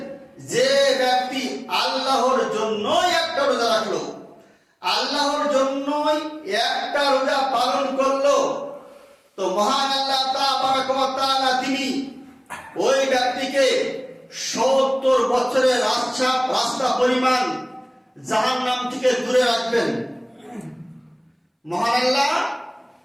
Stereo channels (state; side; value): identical; both; correlation 1.00